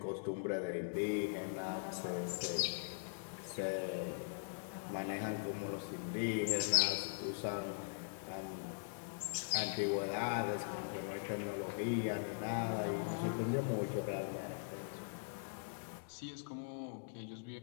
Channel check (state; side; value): silent; right; digital silence